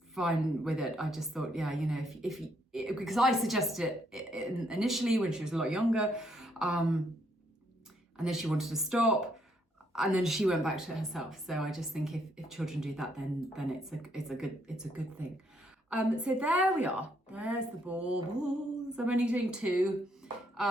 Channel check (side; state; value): both; normal; correlation 0.72